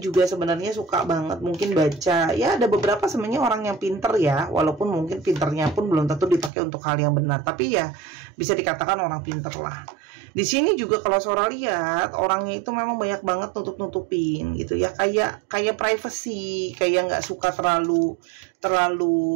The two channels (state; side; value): drops out; left; at 6.5 s